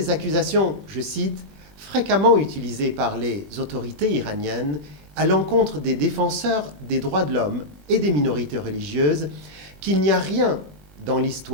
accusations, je cite, fréquemment utilisées par les autorités iraniennes à l'encontre des défenseurs des droits de l'homme et des minorités religieuses, qu'il n'y a rien dans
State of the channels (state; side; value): late; left; 20 ms